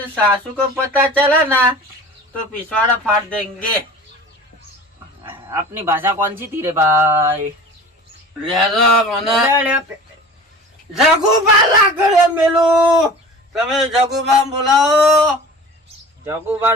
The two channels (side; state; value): both; normal; correlation 0.39